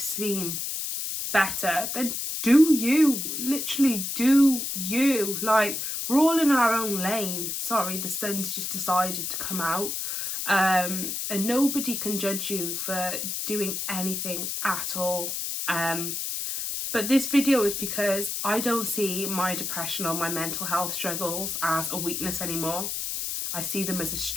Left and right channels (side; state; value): left; noise; hiss, 3 dB below the sound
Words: better, then do you. Literally do you. Like, we're all in our own lane. Sorry, the sun's just decided to come out. And nobody can judge you for doing anything at all. But this video is because I don't see my depression or my mental health struggles as a weakness anymore. I see them as a